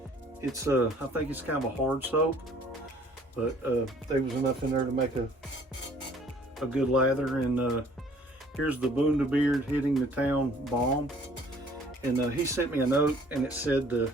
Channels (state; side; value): normal; both; correlation 0.56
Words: it's I think it's kind of a hard soap, but there was enough in there to make a good lather. And here's the Beard Hitting the Town balm. And he sent me a note and it said to